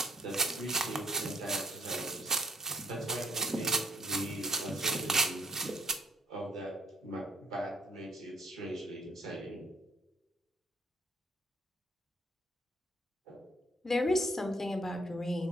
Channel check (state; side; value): normal; both; correlation 0.62